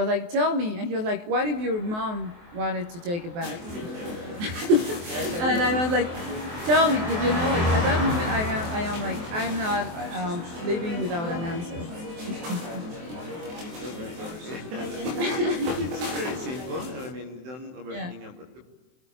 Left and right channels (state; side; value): late; left; 23 ms